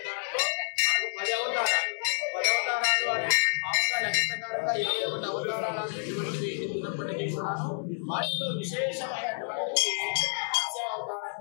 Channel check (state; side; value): silent; right; 58 dB below the other